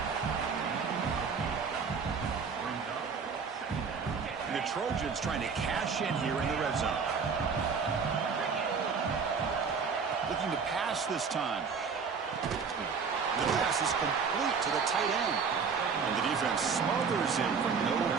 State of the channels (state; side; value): quieter; left; 5.6 dB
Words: The Trojans trying to cash in here in the red zone. Looking to pass this time. The pass is complete to the tight end. And the defense smothers him for no